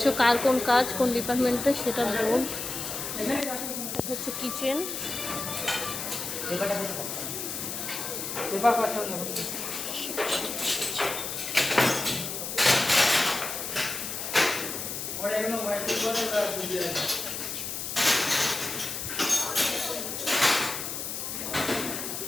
কার কোন কাজ কোন ডিপার্টমেন্টে সেটা বোর্ড। এটা হচ্ছে কিচেন।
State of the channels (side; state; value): left; noise; hiss, 5 dB below the sound